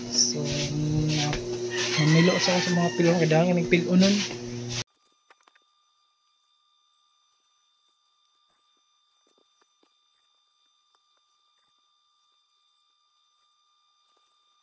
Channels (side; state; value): both; identical; correlation 1.00